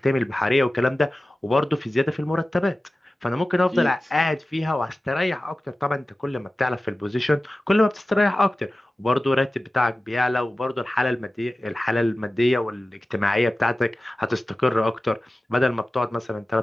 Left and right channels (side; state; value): both; normal; correlation 0.96